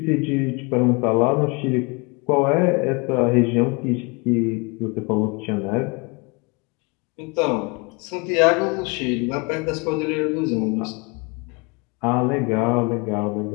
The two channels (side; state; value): right; quieter; 29.7 dB